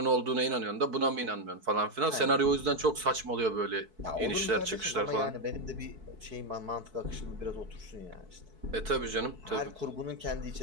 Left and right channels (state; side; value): late; left; 4.6 ms